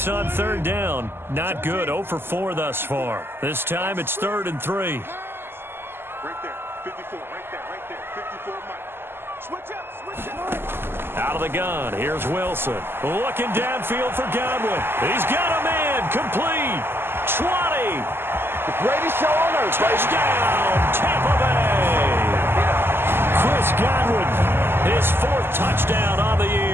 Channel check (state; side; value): late; left; 0.11 ms